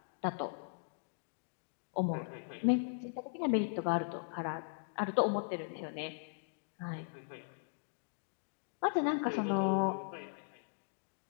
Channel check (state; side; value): silent; right; digital silence